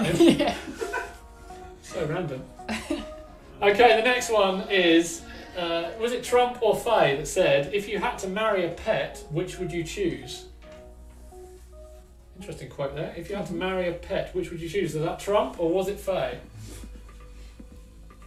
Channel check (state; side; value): identical; both; correlation 1.00